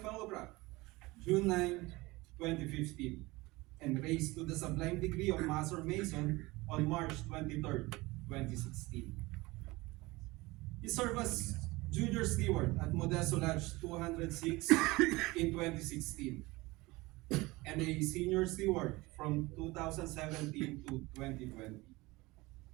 Fellowcraft June 9, 2015, and raised to the sublime degree of Master Mason on March 23, 2016. He served as Junior Steward at Modesto Lodge 206 in 2016, and a Senior Steward from 2017 to 2020.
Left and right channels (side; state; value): left; quieter; 21.8 dB